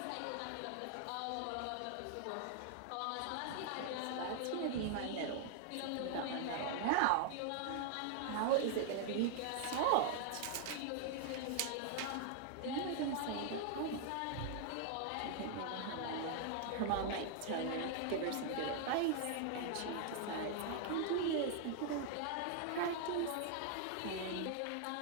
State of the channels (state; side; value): different; both; correlation 0.00